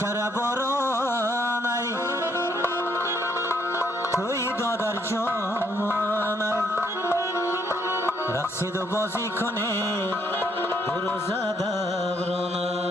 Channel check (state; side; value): normal; both; correlation 0.71